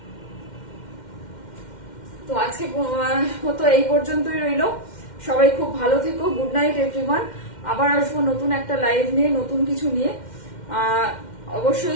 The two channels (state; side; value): late; right; 2.1 ms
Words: তো আজকে মতো এই পর্যন্তই রইল। সবাই খুব ভালো থেকো, গুড নাইট এভরিওয়ান। আবার আসবো নতুন একটা লাইভ নিয়ে, নতুন কিছু নিয়ে।